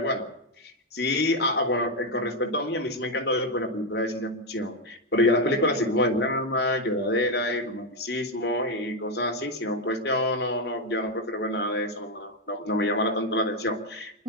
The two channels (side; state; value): both; normal; correlation 0.05